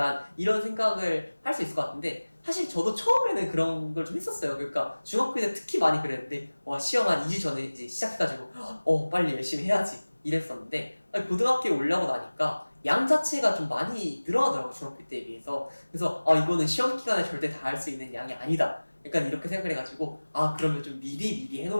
이런 생각을 할 수 있을 것 같은데 사실 저도 처음에는 그런 걸 좀 했었어요. 그러니까 중학교 때 특히 많이 그랬는데 시험 한 2주 전에 이제 시작해가지고 빨리 열심히 해야지 이랬었는데 고등학교에 올라오고 나니까 양 자체가 좀 많이 늘어나더라고요. 중학교 때에 비해서. 그래서 이거는 시험 기간에 절대 다 할 수 있는 양이 아니다. 약간 이렇게 생각을 해가지고 그러면 좀 미리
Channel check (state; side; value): inverted; both; correlation -1.00